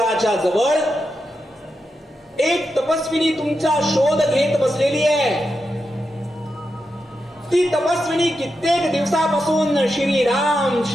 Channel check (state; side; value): normal; both; correlation 0.87